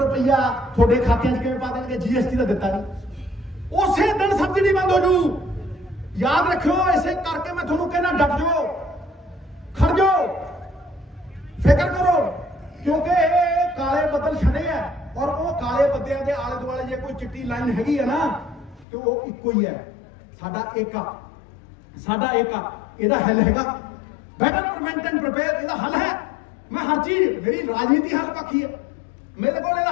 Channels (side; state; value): right; drops out; at 18.9 s